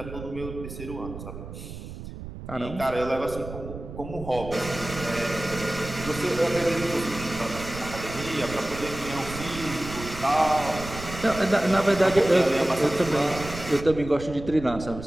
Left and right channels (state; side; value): noise; right; rumble, 11 dB below the sound